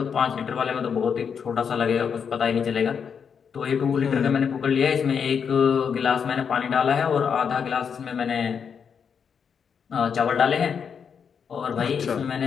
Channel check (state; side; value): quieter; right; 6.8 dB